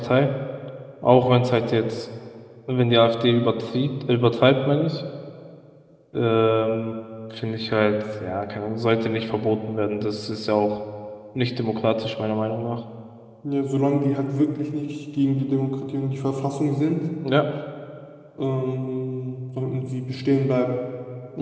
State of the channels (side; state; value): both; identical; correlation 1.00